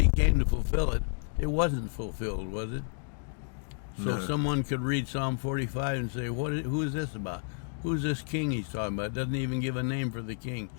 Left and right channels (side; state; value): right; silent; digital silence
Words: came to fulfill it, it wasn't fulfilled, was it? So No. someone could read Psalm 45 and say, who is this about? Who's this king he's talking about? It doesn't even give a name for the king.